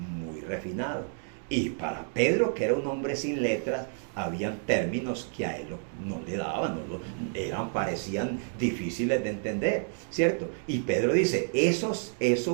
refinado. Y para Pedro, que era un hombre sin letras, habían términos que a él no le daban, parecían difíciles de entender, ¿cierto? Y Pedro dice,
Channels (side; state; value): left; silent; 58 dB below the other